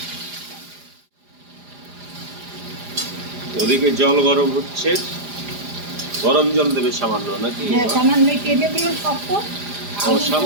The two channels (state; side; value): late; left; 4.9 ms